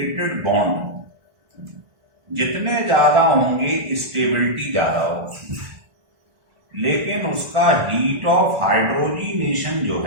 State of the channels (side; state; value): left; late; 1.6 ms